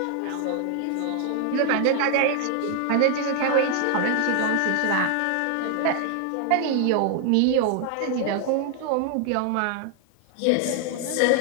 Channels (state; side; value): different; both; correlation 0.00